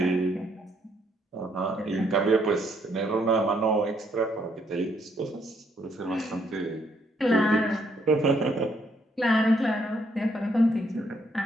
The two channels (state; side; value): normal; both; correlation 0.71